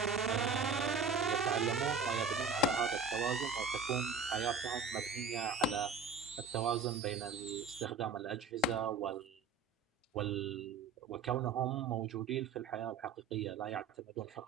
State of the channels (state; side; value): quieter; left; 4.6 dB